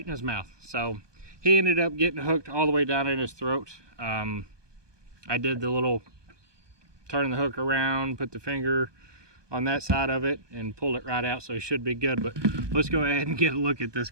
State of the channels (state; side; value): late; left; 1.2 ms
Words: in his mouth. So he ended up getting hooked all the way down in his throat. I did the little turn the hook around, put the finger on that side of it, and pulled it right out, so he should be good. But let's go ahead and get a look at this